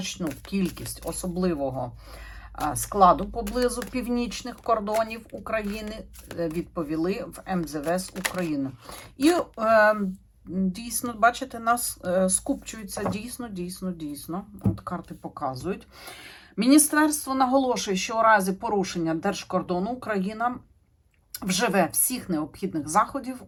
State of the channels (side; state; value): both; identical; correlation 1.00